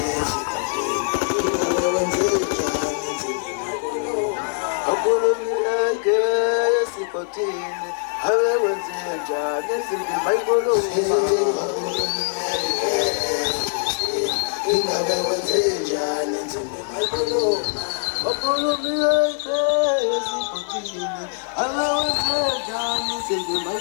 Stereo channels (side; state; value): right; silent; 64 dB below the other